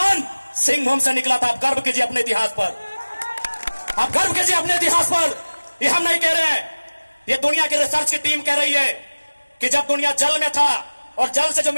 सिंहभूम से निकला था। आप गर्व कीजिए अपने इतिहास पर, आप गर्व कीजिए अपने इतिहास पर। ये हम नहीं कह रहे हैं, ये दुनिया की रिसर्च की टीम कह रही है कि जब दुनिया जल में था और जल से जो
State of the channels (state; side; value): inverted; both; correlation -1.00